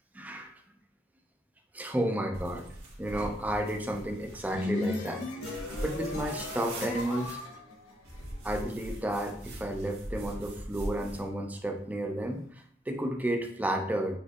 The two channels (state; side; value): normal; both; correlation 0.76